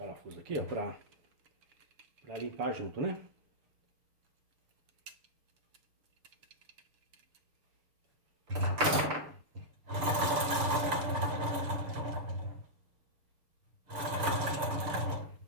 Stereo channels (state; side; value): late; left; 6.8 ms